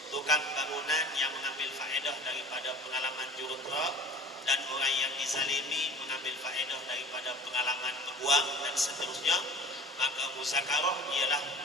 tukang bangunan yang mengambil faedah daripada pengalaman jurutera, dan orang yang dizalimi mengambil faedah daripada pengalaman peguam dan seterusnya. Maka muzakarah ialah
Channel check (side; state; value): both; normal; correlation 0.43